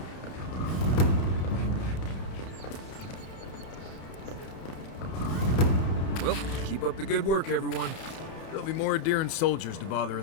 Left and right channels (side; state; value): right; late; 31 ms